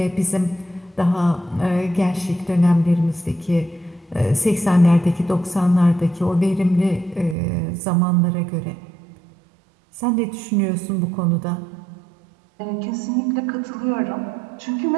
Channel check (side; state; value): left; drops out; at 7.4 s